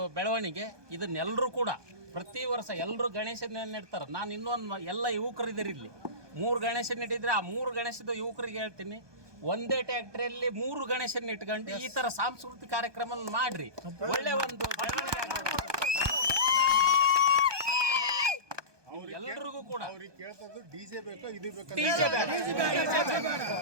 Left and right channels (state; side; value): late; left; 1.2 ms